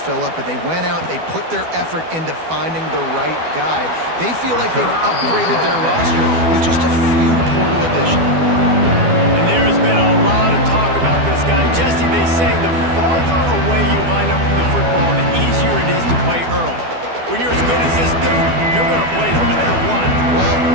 up, but they went out, they put their effort into finding the right guy. They feel like they've upgraded their roster with just a few portal additions. And there has been a lot of talk about this guy. Jesse, they say the farther away you line up from the football, the easier it is to play early. When you're as good as this dude, you're going to play no matter what.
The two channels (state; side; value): late; left; 12 ms